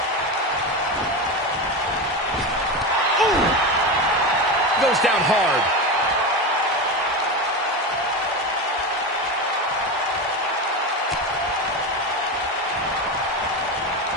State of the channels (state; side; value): normal; both; correlation 0.19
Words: Ooh! Goes down hard.